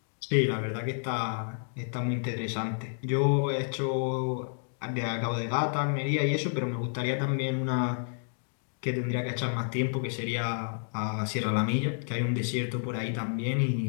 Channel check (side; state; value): right; silent; digital silence